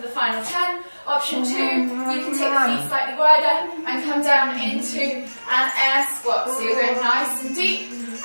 the final 10. Option 2, you can take the feet slightly wider and come down into an air squat. So you're going nice and deep,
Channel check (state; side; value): inverted; both; correlation -1.00